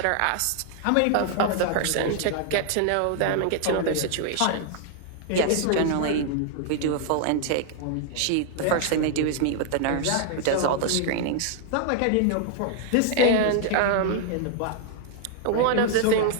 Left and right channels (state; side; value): different; both; correlation 0.00